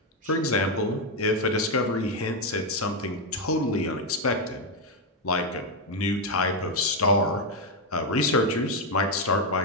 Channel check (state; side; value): normal; both; correlation 0.04